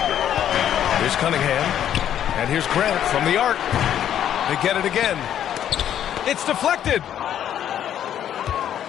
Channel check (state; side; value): quieter; right; 10.3 dB